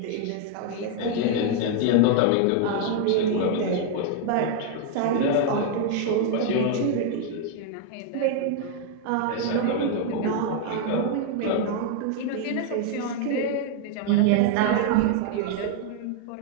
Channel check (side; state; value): both; different; correlation 0.01